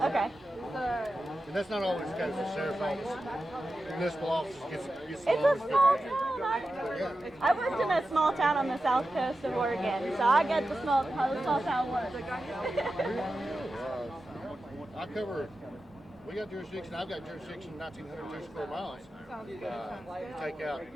Okay. And that's not always the case. The sheriff's office, municipal office gets It's a small town. I worked in a small town on the south coast of Oregon, so I get how the small town works. I cover. We got jurisdiction. I've got jurisdiction 1,902 square miles. Take out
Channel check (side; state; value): both; normal; correlation 0.92